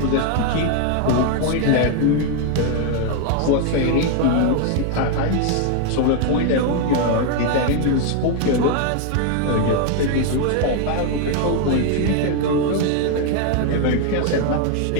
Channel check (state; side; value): different; both; correlation 0.01